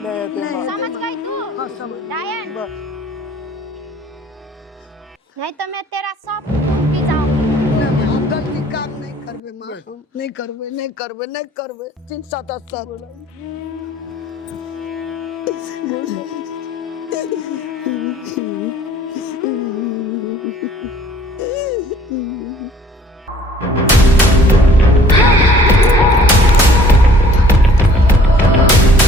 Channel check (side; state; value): both; normal; correlation 0.54